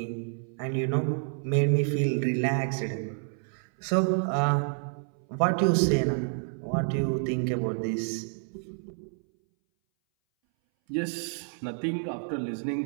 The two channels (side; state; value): left; silent; 59 dB below the other